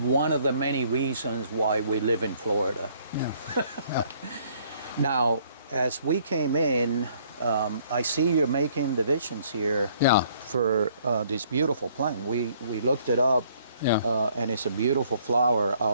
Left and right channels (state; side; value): inverted; both; correlation -0.62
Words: of the many reasons why we live in Florida. Yeah. Now, as we came in, I see you're making divisions here. Yeah. For this beautiful plant. We looked it up. Yeah. And it's a beautiful flower.